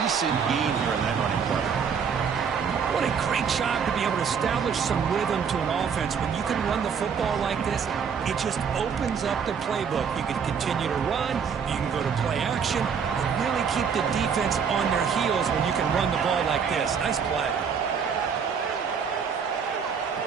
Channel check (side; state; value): left; quieter; 6.7 dB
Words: gain here in that running play. What a great job to be able to establish some rhythm to an offense. When you can run the football like this, it just opens up the playbook. You can continue to run, you can go to play action, and really keep the defense on their heels when you can run the ball like this. Nice play.